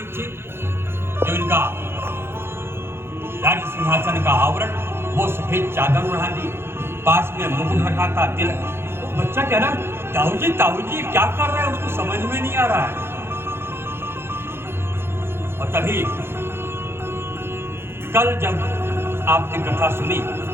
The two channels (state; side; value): late; left; 0.12 ms